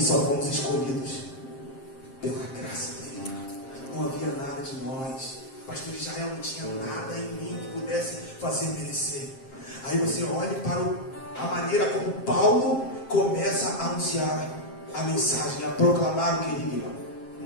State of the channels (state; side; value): late; right; 7.5 ms